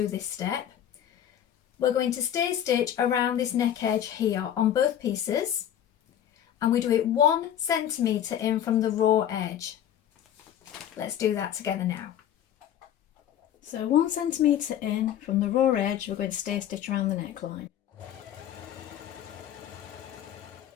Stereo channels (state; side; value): quieter; right; 10.5 dB